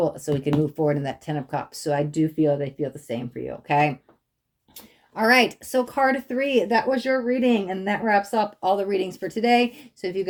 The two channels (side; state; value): both; identical; correlation 1.00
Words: so we can move forward in that 10 of Cups. So I do feel they feel the same for you, okay? All right, so card 3, that was your reading, and that wraps up all the readings for today. So if you